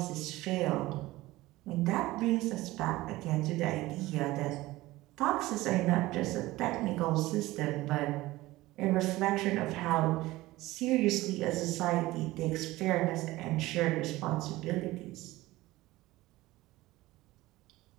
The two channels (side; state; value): left; quieter; 18.3 dB